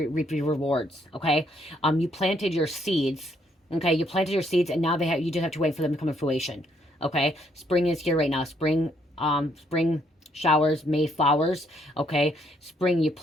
reap your rewards. Okay, you planted your seeds. Okay, you planted your seeds, and now you just have to wait for them to come to fruition. Okay, spring is here right now. Spring showers, May flowers. Okay, spring, you're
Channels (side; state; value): both; normal; correlation 0.71